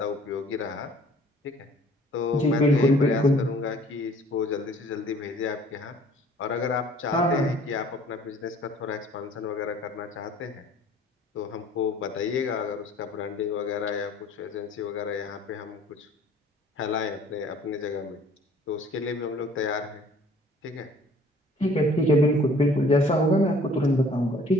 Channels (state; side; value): normal; both; correlation 0.54